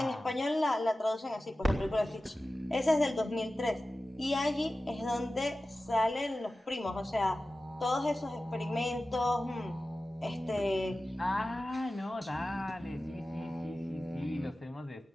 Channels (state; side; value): normal; both; correlation 0.95